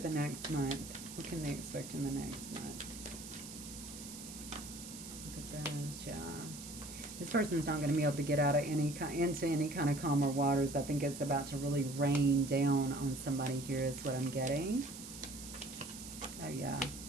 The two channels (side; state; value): right; noise; hiss, 12 dB below the sound